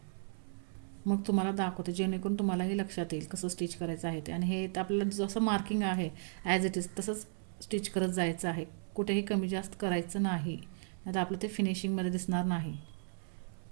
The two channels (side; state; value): left; silent; 54 dB below the other